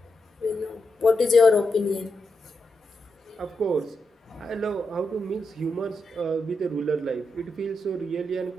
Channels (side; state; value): both; normal; correlation 0.86